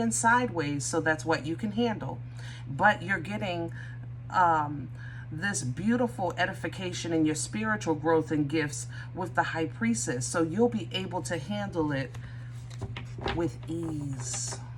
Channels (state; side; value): identical; both; correlation 1.00